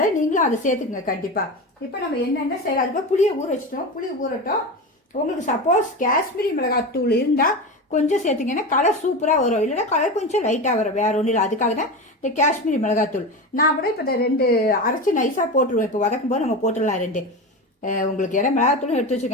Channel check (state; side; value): normal; both; correlation 0.24